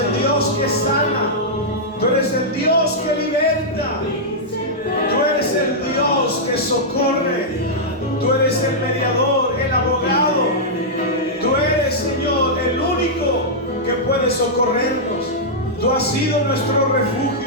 Dios que sana, tú eres el Dios que liberta, tú eres el Dios que socorre, tú eres el mediador, el abogado, tú eres, Señor, el único que puede socorrernos. Tú has sido nuestro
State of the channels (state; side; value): normal; both; correlation -0.08